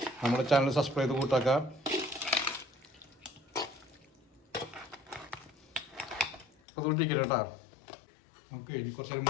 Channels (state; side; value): drops out; right; at 6.5 s